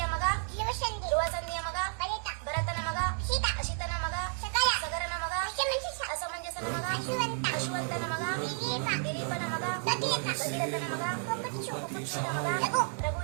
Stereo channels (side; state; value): left; silent; 56 dB below the other